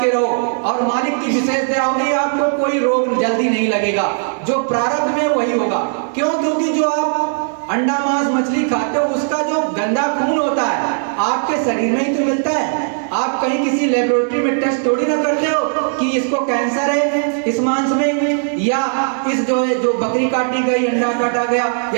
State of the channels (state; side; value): silent; left; digital silence